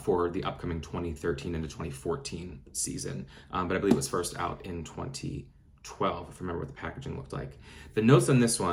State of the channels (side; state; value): both; identical; correlation 1.00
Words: the upcoming 2013 into 2014 season. But I believe it was first out in 2012, if I remember what the packaging looked like. The notes on this